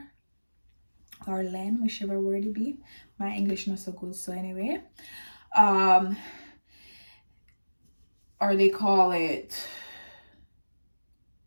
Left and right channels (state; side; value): inverted; both; correlation -1.00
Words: or lend, whichever word it be. My English not so good, so anyway. Or they call it,